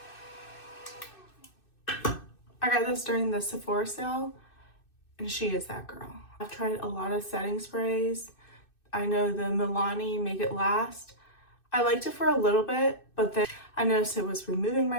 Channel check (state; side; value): late; right; 2.6 ms